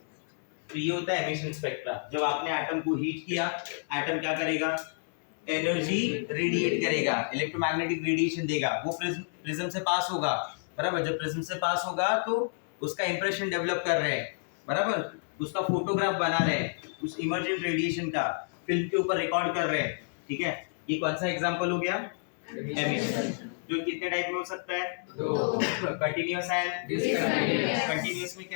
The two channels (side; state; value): right; silent; 58 dB below the other